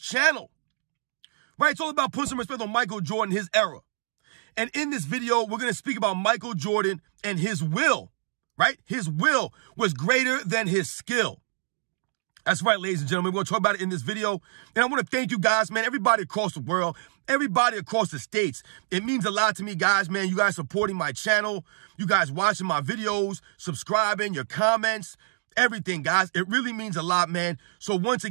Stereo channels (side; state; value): left; silent; digital silence